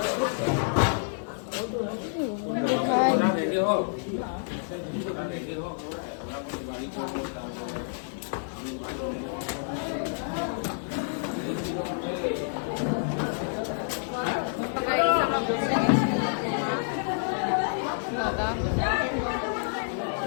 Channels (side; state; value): right; silent; digital silence